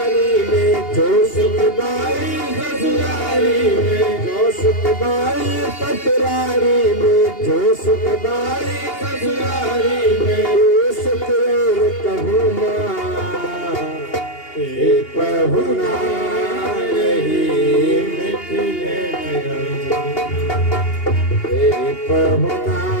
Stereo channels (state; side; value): late; right; 2.8 ms